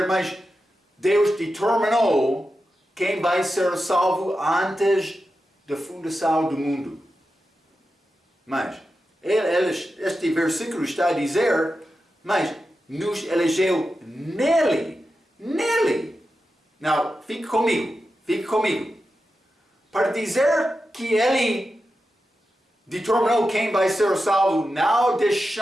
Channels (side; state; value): both; normal; correlation 0.90